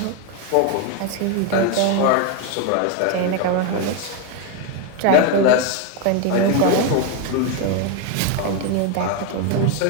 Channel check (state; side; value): different; both; correlation 0.02